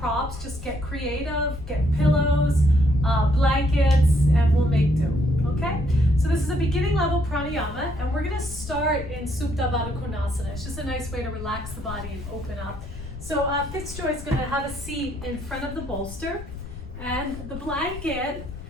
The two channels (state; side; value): noise; left; rumble, 11 dB below the sound